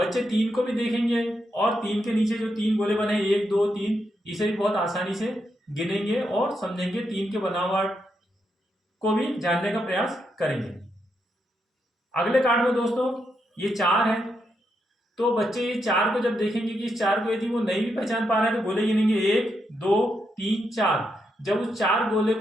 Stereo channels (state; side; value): normal; both; correlation 0.81